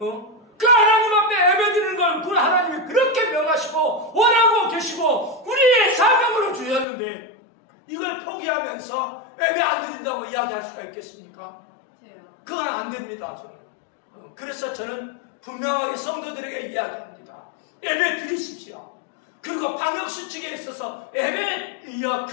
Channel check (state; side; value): drops out; right; at 6.9 s